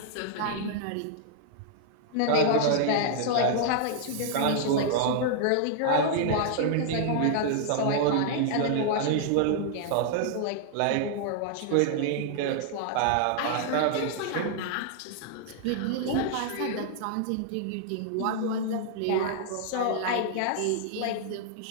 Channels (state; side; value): different; both; correlation -0.01